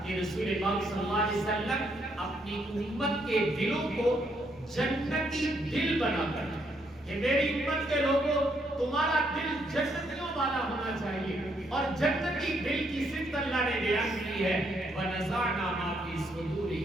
کہ رسول پاک صلی اللہ علیہ وسلم اپنی امت کے دلوں کو جنتی دل بنا کر کہ میری امت کے لوگوں تمہارا دل جنتیوں والا ہونا چاہیے، اور جنتی دل کی صفت اللہ نے بیان کی ہے وَنَزَعْنَا مَا فِي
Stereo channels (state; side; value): normal; both; correlation 0.73